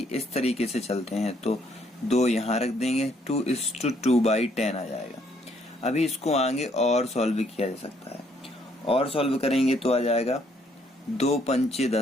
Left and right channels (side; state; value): both; normal; correlation 0.68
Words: इस तरीके से चलते हैं। तो 2 यहाँ रख देंगे, 2:2/10 आ जाएगा। अभी इसको आगे और सॉल्व किया जा सकता है, और सॉल्व करेंगे तो आ जाएगा 2 × 5 =